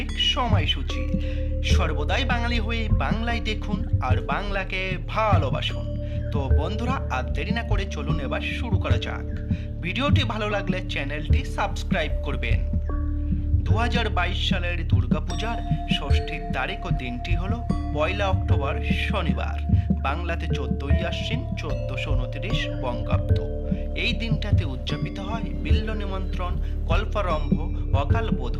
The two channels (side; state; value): both; identical; correlation 1.00